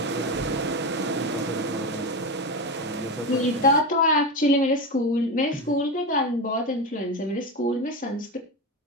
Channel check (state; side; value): normal; both; correlation 0.18